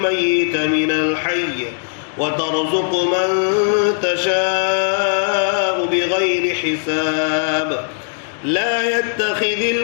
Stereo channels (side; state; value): right; silent; digital silence